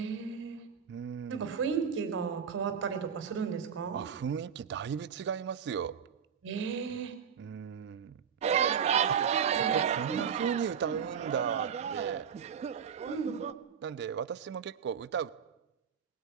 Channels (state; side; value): quieter; left; 7.4 dB